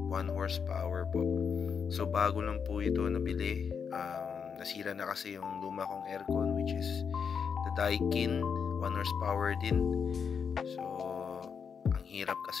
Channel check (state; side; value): quieter; right; 6.5 dB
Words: 1 horsepower po. So, bago lang po ito nabili. Nasira na kasi yung luma kong aircon, which is the Daikin 1 horsepower din. So, hirap